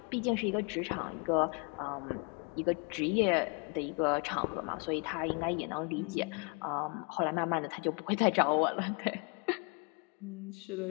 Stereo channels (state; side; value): quieter; right; 34.3 dB